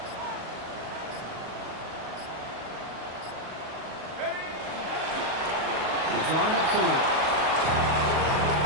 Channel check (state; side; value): late; left; 38 ms